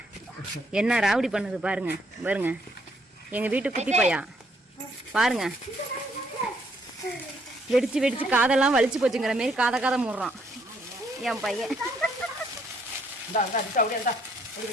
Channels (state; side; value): normal; both; correlation 0.69